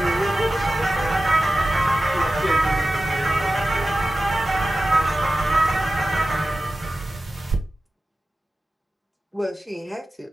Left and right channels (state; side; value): normal; both; correlation 0.94